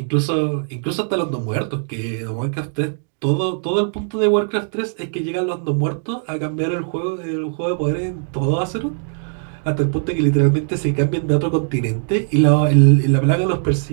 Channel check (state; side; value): silent; left; digital silence